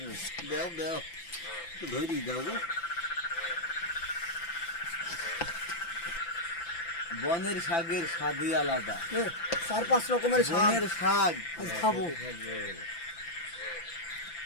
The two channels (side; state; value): right; late; 5.9 ms